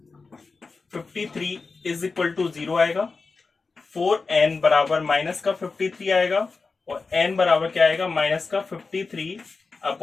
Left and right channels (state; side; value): quieter; right; 4.2 dB